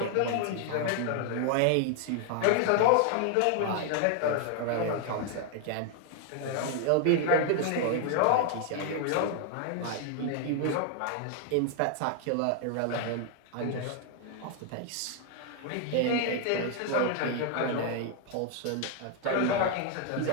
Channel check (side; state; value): both; different; correlation 0.00